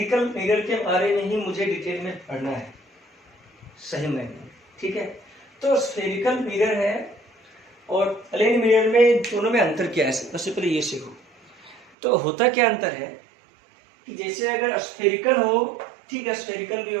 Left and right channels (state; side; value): drops out; left; at 11.9 s